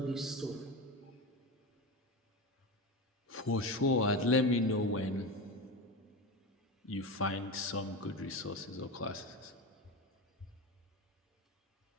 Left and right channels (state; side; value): normal; both; correlation 0.22